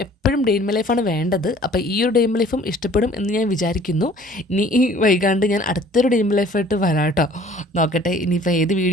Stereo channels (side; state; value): both; normal; correlation 0.52